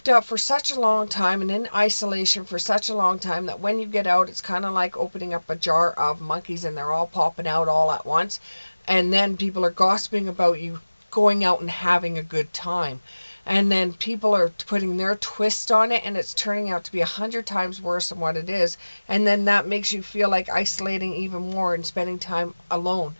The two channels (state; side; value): inverted; both; correlation -1.00